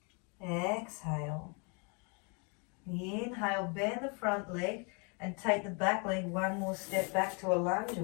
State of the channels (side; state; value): right; quieter; 34.9 dB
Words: Exhale. Inhale, bend the front leg and take the back leg one more step back to a lunge